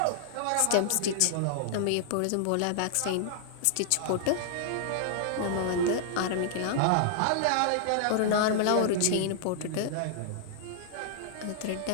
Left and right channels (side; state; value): both; different; correlation -0.01